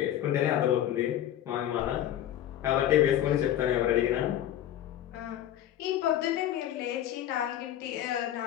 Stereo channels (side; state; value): right; quieter; 11.6 dB